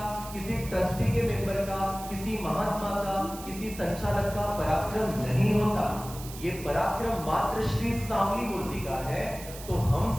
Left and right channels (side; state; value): right; noise; hiss, 14 dB below the sound